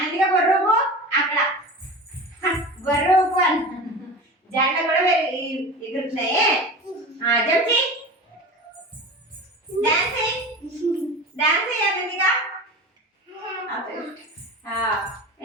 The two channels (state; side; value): normal; both; correlation 0.32